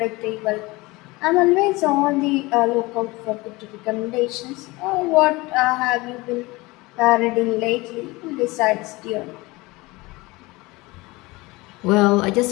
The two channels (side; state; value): right; quieter; 22.4 dB